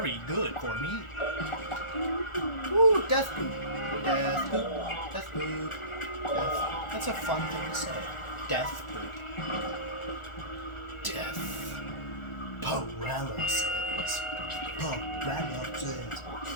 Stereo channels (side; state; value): right; late; 1.4 ms